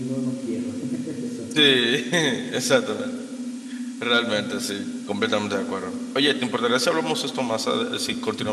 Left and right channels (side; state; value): both; identical; correlation 1.00